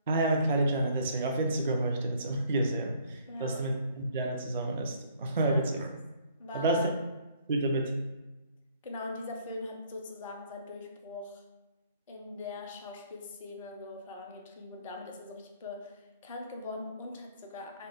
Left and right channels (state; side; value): inverted; both; correlation -0.62